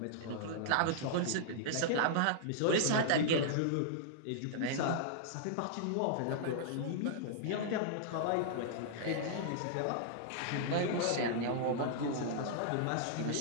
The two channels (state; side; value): different; both; correlation -0.01